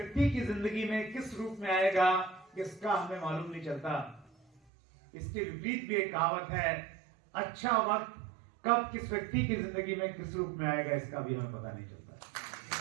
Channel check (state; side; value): drops out; left; at 4.6 s